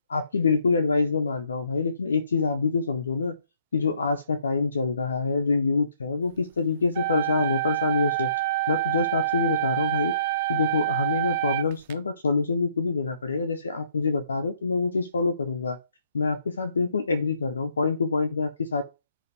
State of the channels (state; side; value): inverted; both; correlation -0.66